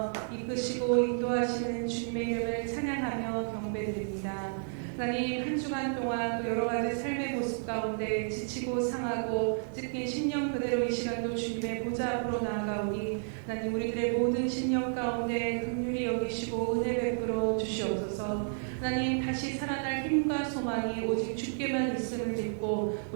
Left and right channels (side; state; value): left; silent; digital silence